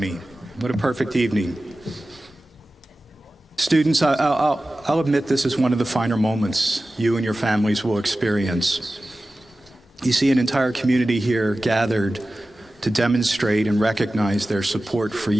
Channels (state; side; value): normal; both; correlation 0.95